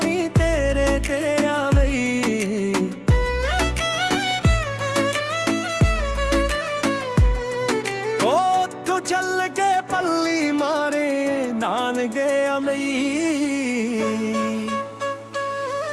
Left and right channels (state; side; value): identical; both; correlation 1.00